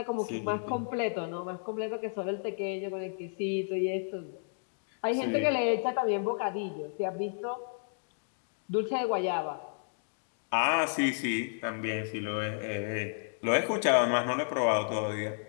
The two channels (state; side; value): silent; right; digital silence